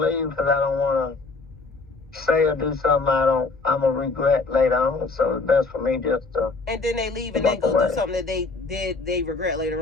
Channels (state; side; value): quieter; right; 3.8 dB